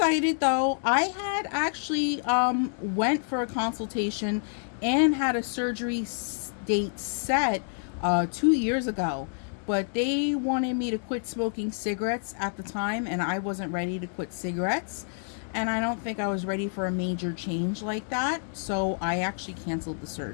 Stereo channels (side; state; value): right; silent; digital silence